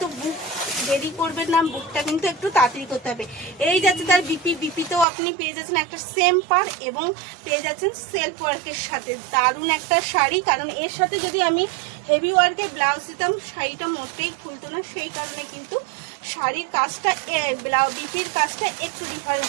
বুক দেরি করবেন না, বুকটা কিন্তু একটু তাড়াতাড়ি করতে হবে। এই যাচ্ছে তার বিপিতেও আপনি পেয়ে যাচ্ছেন একটা সেম পার এবং পেয়ে যাচ্ছেন সেলফ ওয়ার্কের সাথে। দারুণ একটা শাড়ি, কারণ এর সাথে যদি আমি হেভি ওয়ার্কের ব্লাউজ দিতাম শাড়িটা মোটেই খুলতো না, সেই কারণে কিন্তু শাড়ির কাজটা বিপির কাজটা একটু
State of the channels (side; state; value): left; drops out; at 5.1 s